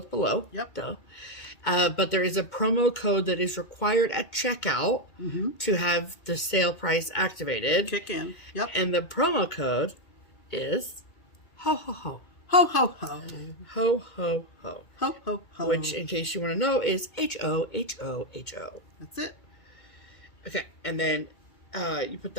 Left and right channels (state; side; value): late; right; 2.2 ms